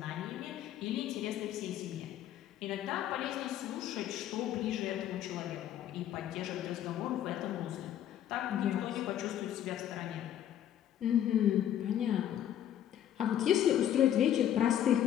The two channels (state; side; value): quieter; right; 10.9 dB